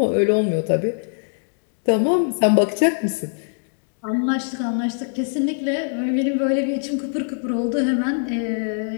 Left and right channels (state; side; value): silent; right; 64 dB below the other